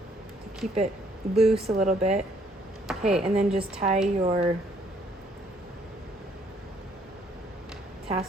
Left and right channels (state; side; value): normal; both; correlation 0.65